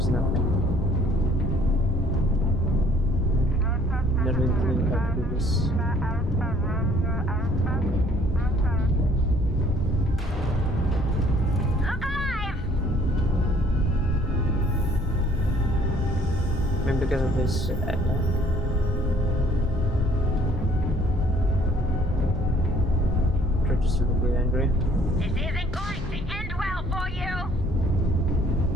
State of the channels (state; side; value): normal; both; correlation 0.59